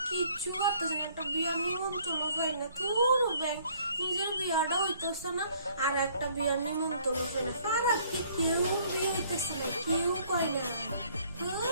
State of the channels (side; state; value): both; inverted; correlation -0.61